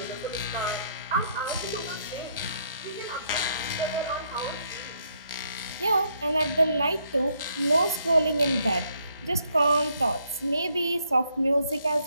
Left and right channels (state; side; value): inverted; both; correlation -0.72